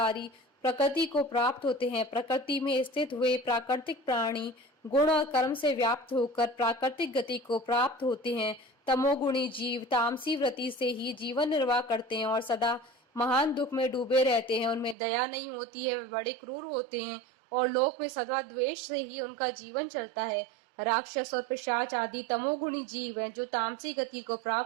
ही प्रकृति को प्राप्त होते हैं। प्रकृति में स्थित हुए प्राकृतिक प्राणी गुण और कर्म से व्याप्त होकर प्राकृतिक गति को प्राप्त होते हैं। तमोगुणी जीव तामसी वृत्ति से ही जीवन निर्वाह करते हैं और सदा महान दुख में डूबे रहते हैं, उनमें दया नहीं होती है, वे बड़े क्रूर होते हैं और लोक में सदा द्वेष से ही उनका जीवन चलता है। राक्षस और पिशाच आदि तमोगुणी जीव हैं जो तामसी गति को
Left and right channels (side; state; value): left; drops out; at 15.0 s